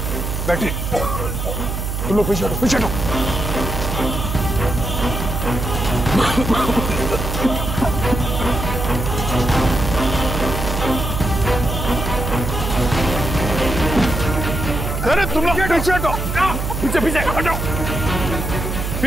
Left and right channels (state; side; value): noise; right; hum, 3 dB below the sound